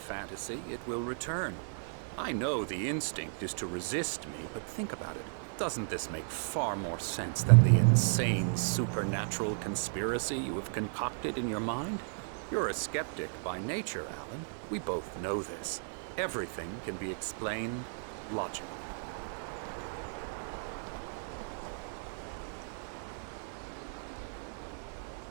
it will return. I know the instinct is to resist me, but think about it. Doesn't this make far more sense than the insane supernatural conspiracy you have concocted in your mind? You're a skeptic by nature, Alan. We both know this. Everything can be explained logically.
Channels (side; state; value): left; silent; digital silence